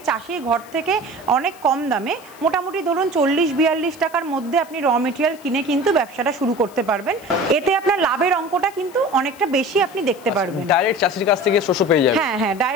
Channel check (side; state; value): left; noise; hiss, 24 dB below the sound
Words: চাষির ঘর থেকে অনেক কম দামে মোটামুটি ধরুন 40-42 টাকার মধ্যে আপনি র মেটেরিয়াল কিনে কিন্তু ব্যবসাটা শুরু করতে পারবেন। এতে আপনার লাভের অঙ্কটা কিন্তু অনেকটা বেশি আপনি দেখতে পারবেন। ডাইরেক্ট চাষির কাছ থেকে শস্য পেয়ে যাবেন। হ্যাঁ হ্যাঁ,